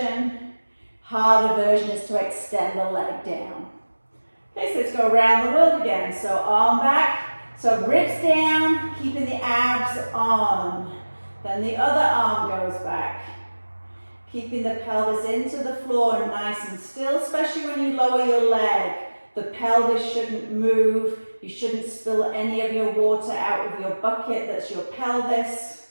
Harder version is to extend the leg down. Okay, so let's go around the world again. So arm back, so ribs down, keeping the abs on. Then the other arm goes back. Keeping the pelvis into the floor nice and still, especially when you lower your leg. The pelvis shouldn't move. You shouldn't spill any of your water out of your bucket. That's your pelvis.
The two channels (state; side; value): inverted; both; correlation -1.00